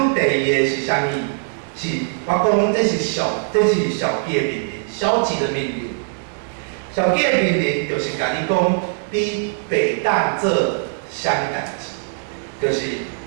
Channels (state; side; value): silent; left; 65 dB below the other